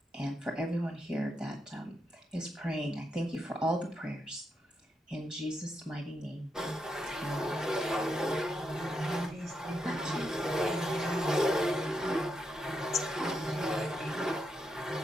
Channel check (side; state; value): both; normal; correlation 0.83